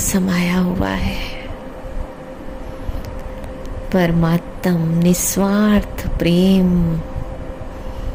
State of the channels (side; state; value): both; identical; correlation 1.00